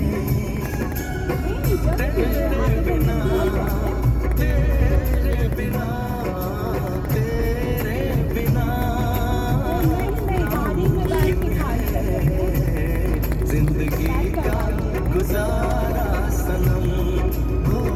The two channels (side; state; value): both; identical; correlation 1.00